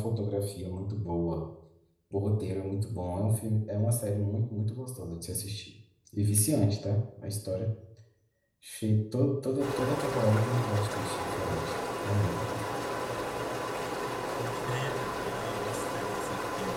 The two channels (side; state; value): both; identical; correlation 1.00